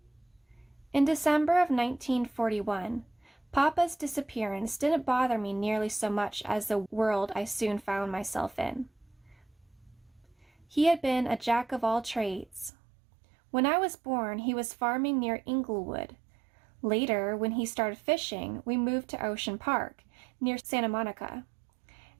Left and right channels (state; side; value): drops out; left; at 12.7 s